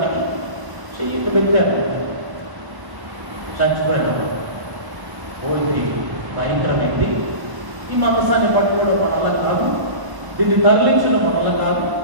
చెయ్యికి పెట్టారు, చచ్చిపోయాడు. పోయి భయంకరమైంది. ఈ మందసాన్ని పట్టుకోవడం మన వల్ల కాదు, దీన్ని తరలించడం మన వల్ల కాదు.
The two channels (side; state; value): left; late; 1.1 ms